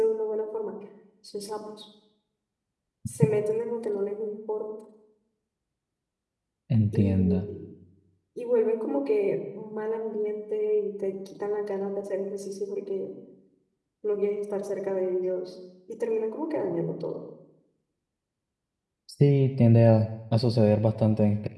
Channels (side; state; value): both; identical; correlation 1.00